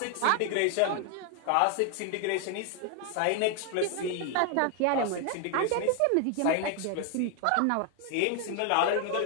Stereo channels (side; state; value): both; different; correlation 0.01